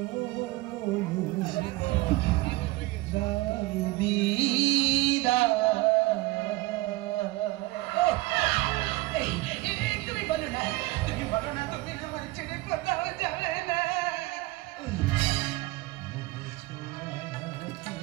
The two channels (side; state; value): left; quieter; 20.8 dB